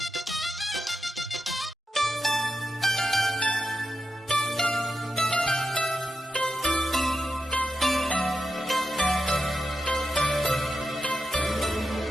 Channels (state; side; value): normal; both; correlation 0.88